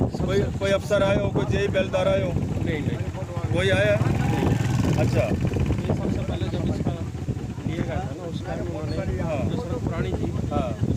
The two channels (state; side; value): identical; both; correlation 1.00